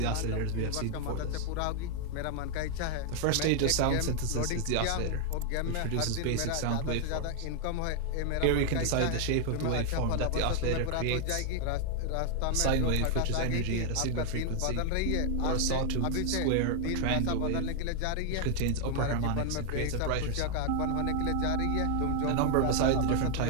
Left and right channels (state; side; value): different; both; correlation 0.00